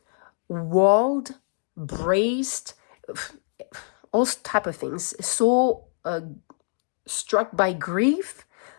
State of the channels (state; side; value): silent; right; digital silence